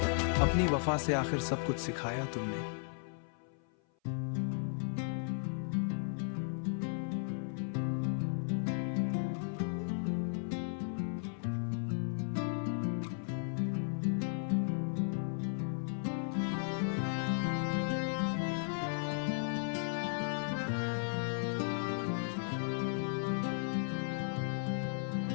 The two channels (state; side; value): silent; right; 54 dB below the other